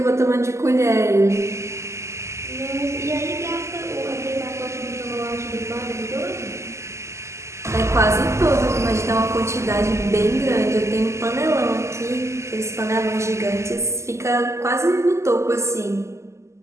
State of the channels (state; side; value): late; left; 0.13 ms